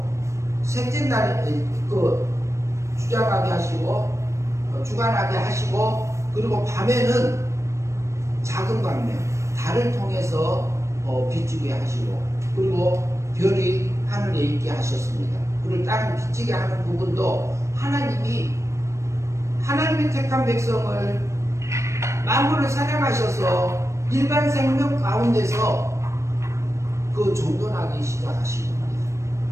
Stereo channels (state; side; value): late; left; 0.14 ms